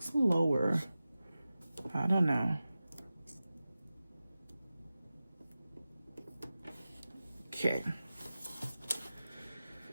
lower. I don't know. Okay.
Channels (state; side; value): inverted; both; correlation -0.95